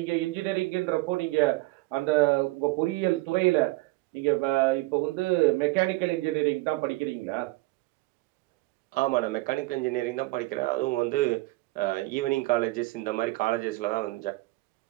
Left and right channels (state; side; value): quieter; left; 21.1 dB